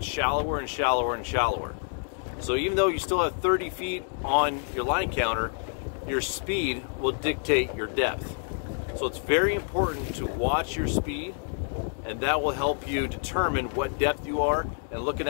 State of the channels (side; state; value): right; silent; 56 dB below the other